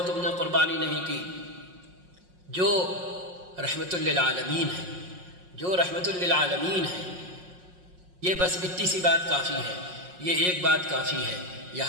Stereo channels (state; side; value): late; left; 5.5 ms